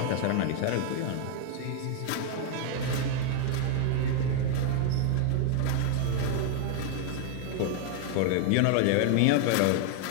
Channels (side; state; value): both; different; correlation 0.00